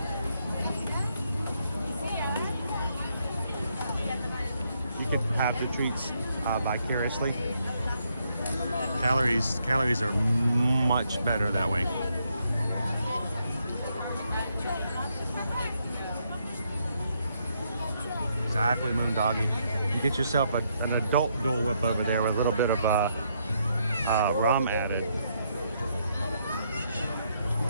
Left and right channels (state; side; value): inverted; both; correlation -0.76